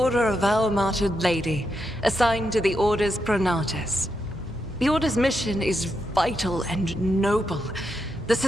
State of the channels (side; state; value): both; normal; correlation 0.83